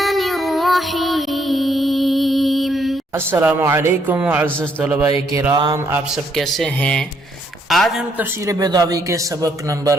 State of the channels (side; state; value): both; normal; correlation 0.71